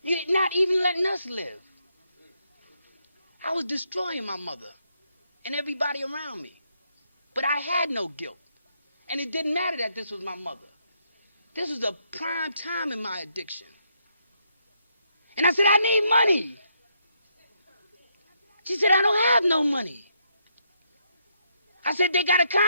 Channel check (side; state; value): both; inverted; correlation -0.76